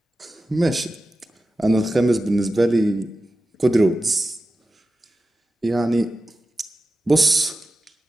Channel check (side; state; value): both; normal; correlation 0.93